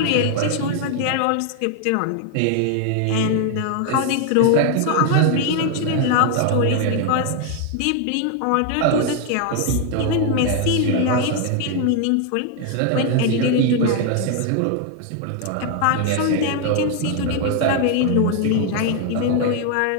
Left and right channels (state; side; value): different; both; correlation 0.00